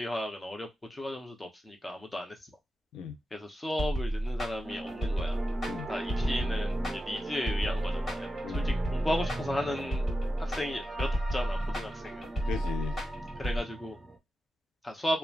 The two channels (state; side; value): normal; both; correlation 0.91